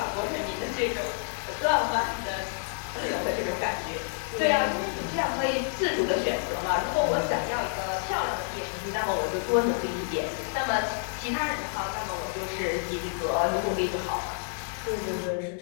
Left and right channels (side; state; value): right; silent; digital silence